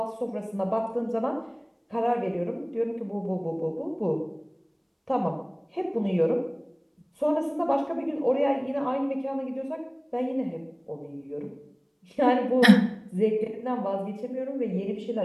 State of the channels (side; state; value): both; identical; correlation 1.00